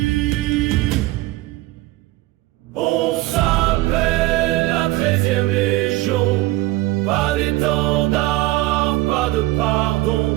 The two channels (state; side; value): quieter; left; 18.2 dB